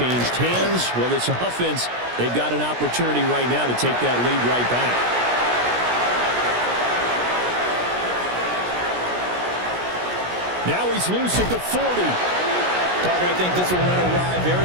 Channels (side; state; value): left; late; 17 ms